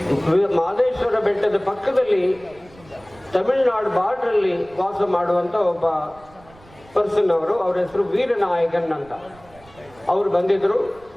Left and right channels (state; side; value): noise; right; rumble, 25 dB below the sound